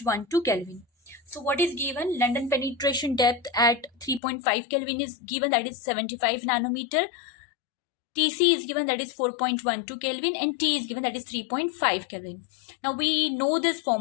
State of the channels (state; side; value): drops out; right; at 4.2 s